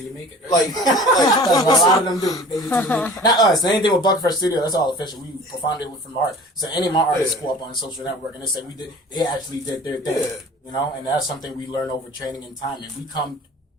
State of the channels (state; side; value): normal; both; correlation 0.43